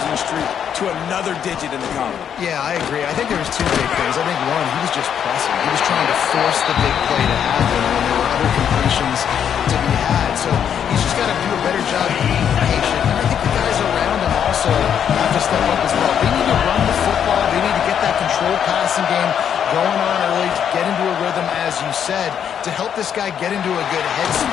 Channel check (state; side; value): quieter; right; 8.6 dB